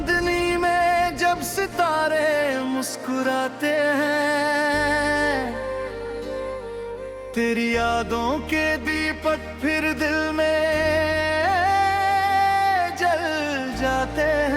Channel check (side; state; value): both; identical; correlation 1.00